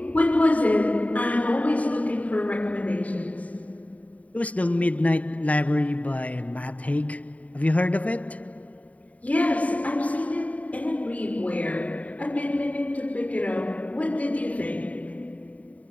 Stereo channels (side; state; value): right; late; 0.069 ms